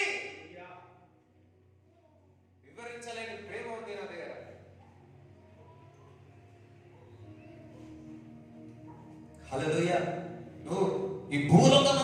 వివరించలేని ప్రేమ ఉంది నా దగ్గర. హల్లెలూయా. నువ్వు ఈ భూలోకం,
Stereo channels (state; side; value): identical; both; correlation 1.00